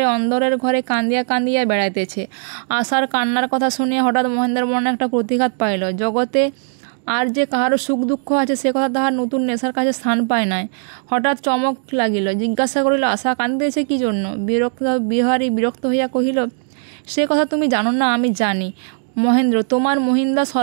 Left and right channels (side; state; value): left; silent; digital silence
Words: অন্দরের ঘরে কান্দিয়া কান্দিয়া বেড়াইতেছে। আশার কান্নার কথা শুনিয়া হঠাৎ মহেন্দ্রের মনে একটা প্রতিঘাত পাইল। জগতে আর যে কাহারও সুখ দুঃখ আছে সে কথা তাহার নতুন নেশার কাছে স্থান পায় নাই। হঠাৎ চমক লাগিল। জিজ্ঞাসা করিল, আশা কান্দিতেছে কি জন্য? বিহারী বিরক্ত হইয়া কহিল, সে কথা তুমি জানো না, আমি জানি। মহেন্দ্র, তোমার মহিন্দা